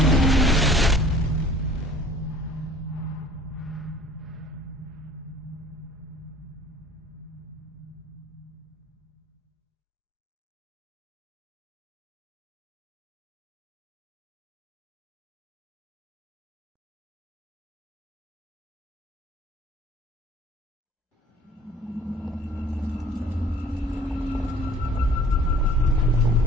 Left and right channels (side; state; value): both; normal; correlation 0.51